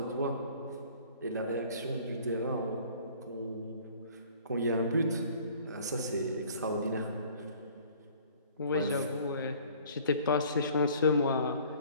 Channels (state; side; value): inverted; both; correlation -0.52